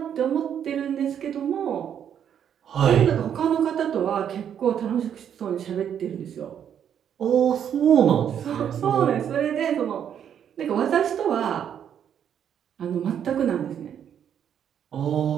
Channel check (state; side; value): quieter; left; 8.9 dB